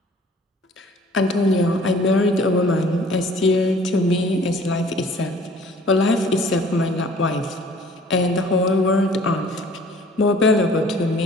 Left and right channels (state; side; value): normal; both; correlation 0.52